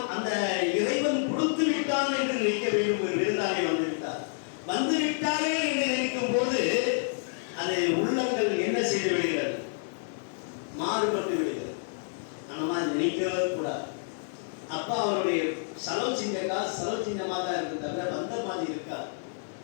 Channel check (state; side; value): silent; right; digital silence